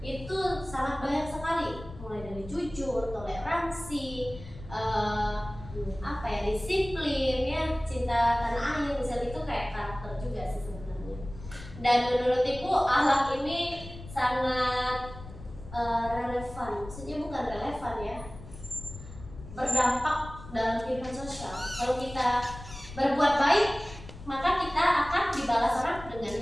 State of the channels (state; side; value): noise; left; rumble, 14 dB below the sound